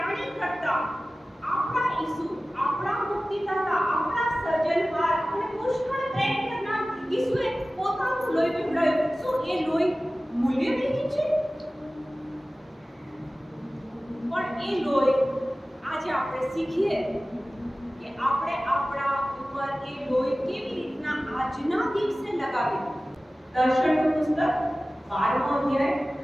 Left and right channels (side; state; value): both; normal; correlation 0.97